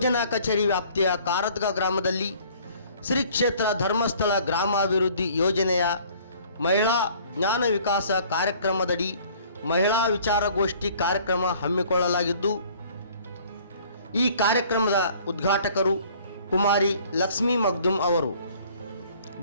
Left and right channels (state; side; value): inverted; both; correlation -0.54